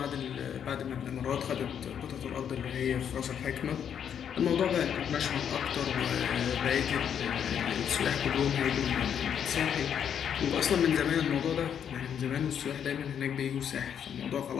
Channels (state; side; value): quieter; right; 8.5 dB